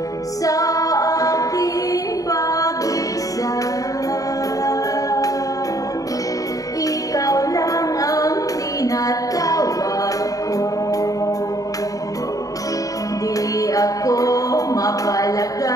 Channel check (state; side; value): late; right; 0.17 ms